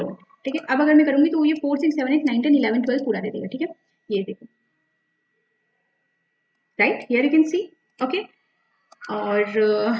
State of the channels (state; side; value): identical; both; correlation 1.00